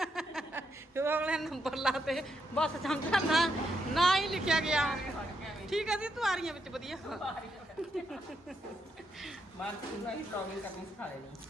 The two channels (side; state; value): both; normal; correlation 0.80